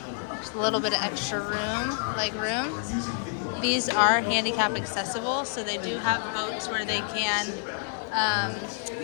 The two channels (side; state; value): right; silent; 59 dB below the other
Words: Just a little bit of extra room, leg room. These are handicap accessible, so they do have boats where they can